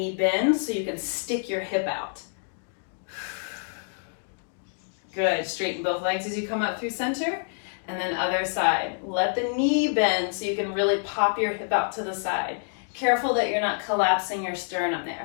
bend so you can stick your hip out. Good, straighten both legs as you come up through center, and then other side. Let the knee bend so you can really pop your hip out to the side. Careful that you're not collapsing your sternum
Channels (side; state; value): right; silent; 60 dB below the other